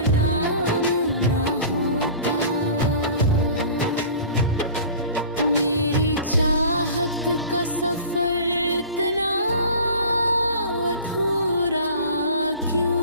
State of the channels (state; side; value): inverted; both; correlation -0.41